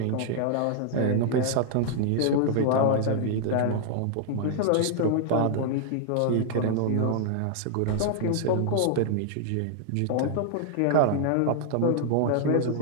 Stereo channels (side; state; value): both; different; correlation -0.01